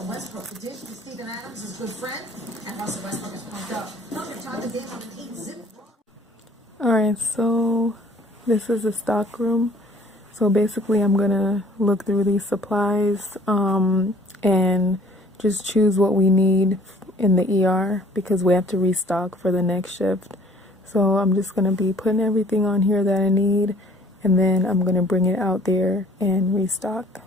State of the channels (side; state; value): both; normal; correlation 0.55